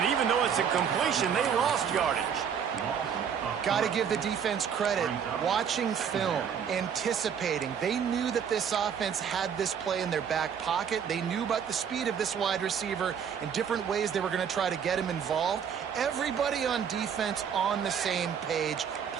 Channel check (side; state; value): left; quieter; 7.6 dB